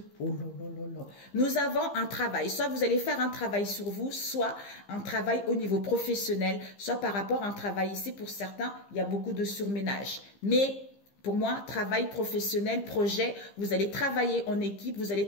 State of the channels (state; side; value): late; right; 15 ms